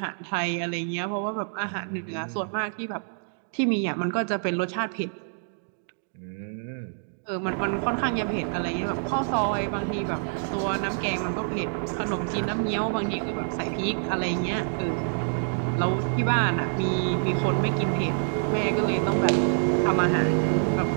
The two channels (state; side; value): silent; left; digital silence